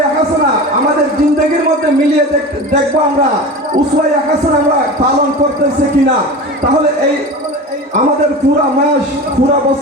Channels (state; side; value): normal; both; correlation 0.31